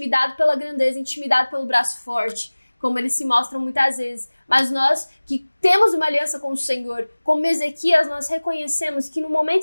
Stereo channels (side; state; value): both; inverted; correlation -1.00